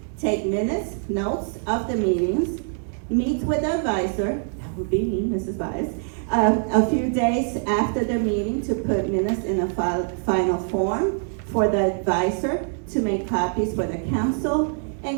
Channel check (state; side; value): silent; left; 63 dB below the other